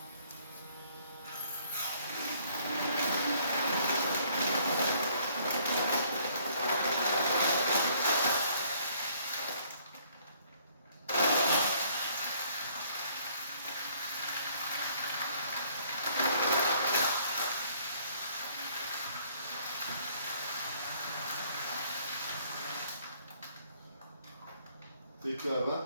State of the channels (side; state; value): both; inverted; correlation -0.62